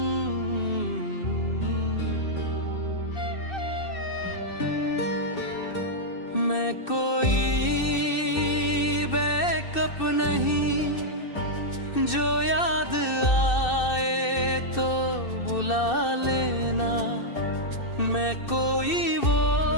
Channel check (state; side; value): late; right; 2.6 ms